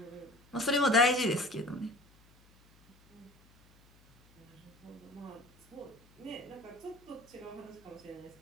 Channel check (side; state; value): left; noise; hum, 28 dB below the sound